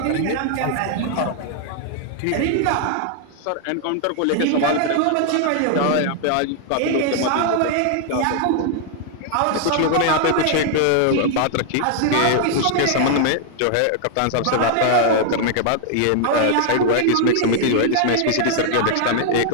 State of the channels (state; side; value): different; both; correlation 0.00